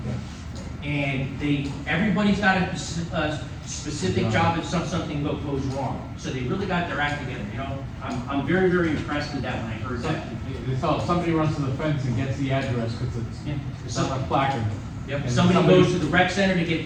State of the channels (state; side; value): identical; both; correlation 1.00